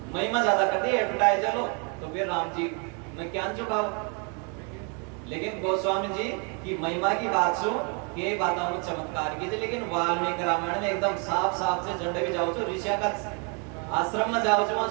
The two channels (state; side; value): quieter; left; 36.1 dB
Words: महिमा ज्यादा कर दी एडवर्टाइजर लो तो फिर राम जी ने क्या चुका। लेकिन गोस्वामी जी की महिमा की बात सुन के बातों में चमत्कार की थी, लेकिन वाल्मीकि रामायण में एकदम साफ साफ से झंडे भी जाओ तो ऋषिया का आश्रम में जाओ वहां